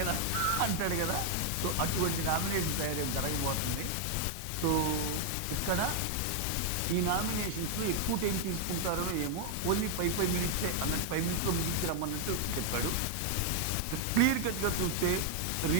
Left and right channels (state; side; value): different; both; correlation 0.00